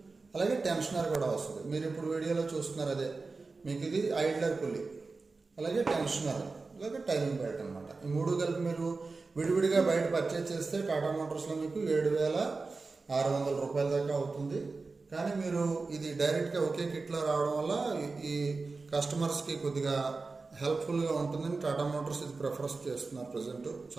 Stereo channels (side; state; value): left; quieter; 3.9 dB